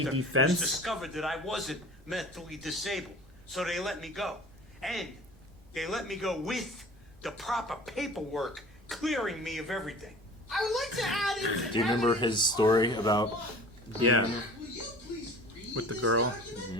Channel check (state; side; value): normal; both; correlation 0.43